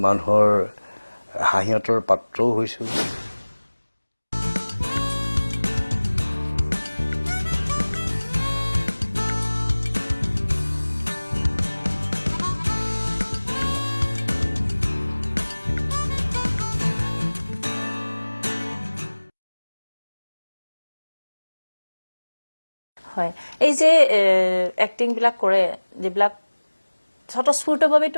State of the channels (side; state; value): both; inverted; correlation -1.00